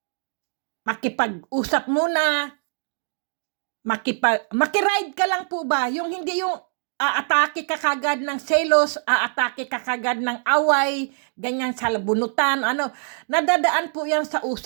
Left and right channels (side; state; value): left; silent; digital silence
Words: makipag-usap muna, makiride ka lang po ba? Yung hindi yung aatake ka kagad ng selos, aatake ka kagad ng away, ganyan sa bunutan, nadadaan po yan sa